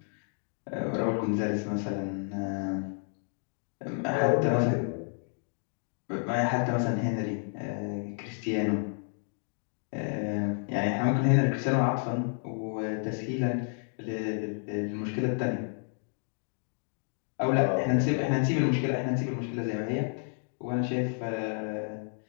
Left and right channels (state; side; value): silent; right; 55 dB below the other